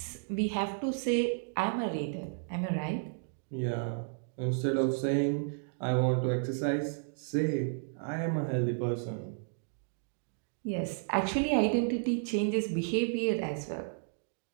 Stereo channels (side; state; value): left; silent; digital silence